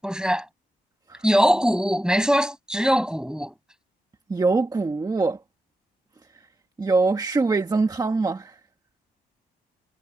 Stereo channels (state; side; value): normal; both; correlation 0.90